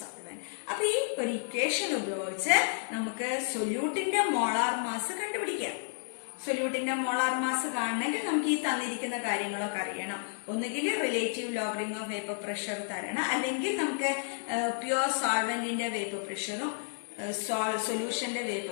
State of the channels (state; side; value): silent; right; 57 dB below the other